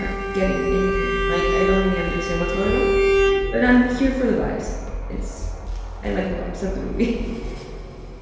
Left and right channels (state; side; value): identical; both; correlation 1.00